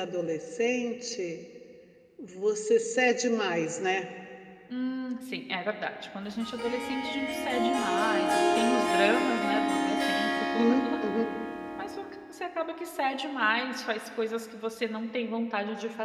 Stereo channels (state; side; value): identical; both; correlation 1.00